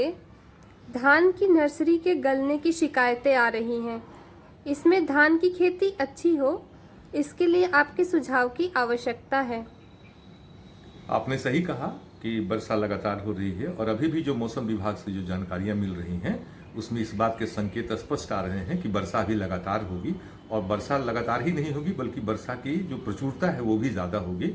धान की नर्सरी के गलने की शिकायतें आ रही हैं। इसमें धान की खेती अच्छी हो, इसके लिए आपके सुझाव की आवश्यकता है। आपने सही कहा कि वर्षा लगातार हो रही है और अभी भी जो मौसम विभाग से जो जानकारियां मिल रही हैं उसमें इस बात के संकेत स्पष्ट आ रहे हैं कि वर्षा भी लगातार होगी। और वर्षा लगातार ही नहीं होगी बल्कि वर्षा की जो प्रचुरता है वो भी ज़्यादा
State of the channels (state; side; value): identical; both; correlation 1.00